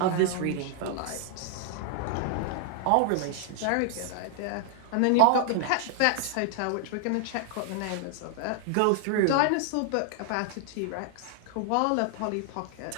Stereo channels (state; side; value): different; both; correlation 0.00